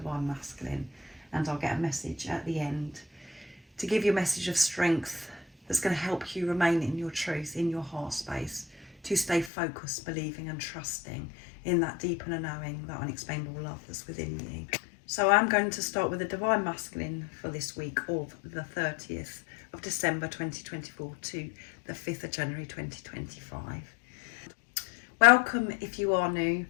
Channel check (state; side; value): drops out; right; at 9.5 s